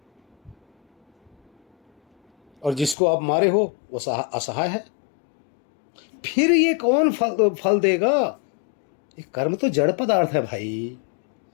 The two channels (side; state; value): right; drops out; at 3.0 s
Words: और जिसको आप मारे हो वो असहाय है, फिर ये कौन फल देगा? ये कर्म तो जड़ पदार्थ है भाई।